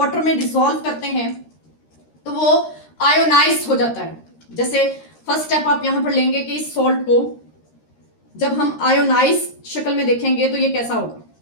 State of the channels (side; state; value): right; late; 13 ms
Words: में डिसॉल्व करते हैं तो वो आयोनाइज हो जाता है। जैसे फर्स्ट स्टेप आप यहां पर लेंगे कि इस सॉल्ट को जब हम आयोनाइज शक्ल में देखेंगे तो ये कैसा होगा,